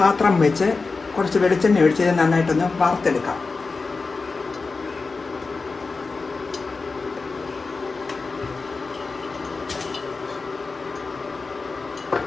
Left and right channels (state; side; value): quieter; right; 4.1 dB